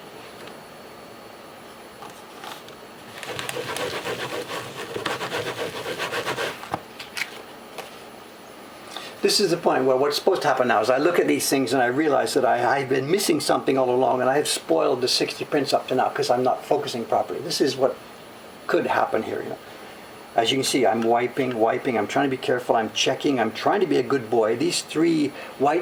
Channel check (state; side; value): identical; both; correlation 1.00